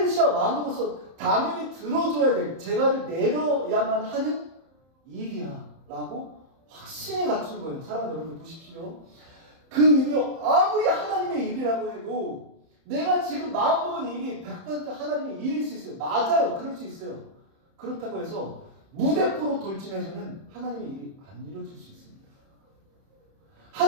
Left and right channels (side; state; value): left; late; 30 ms